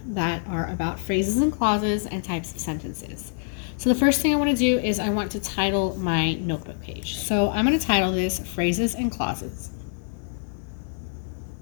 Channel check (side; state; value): right; silent; digital silence